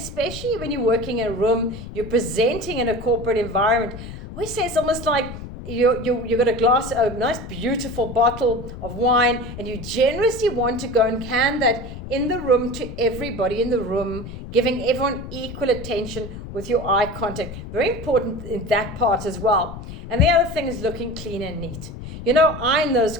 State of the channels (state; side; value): noise; left; rumble, 11 dB below the sound